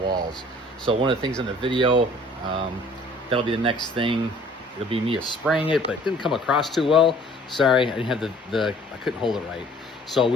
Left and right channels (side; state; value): both; normal; correlation 0.54